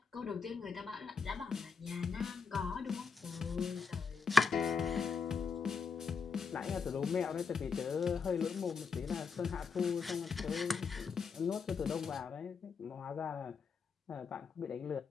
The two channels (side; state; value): right; quieter; 5.4 dB